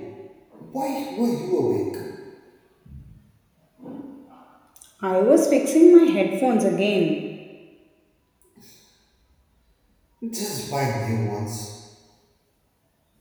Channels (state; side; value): identical; both; correlation 1.00